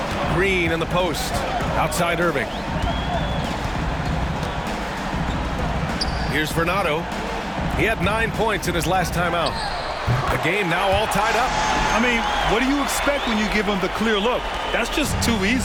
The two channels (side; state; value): both; identical; correlation 1.00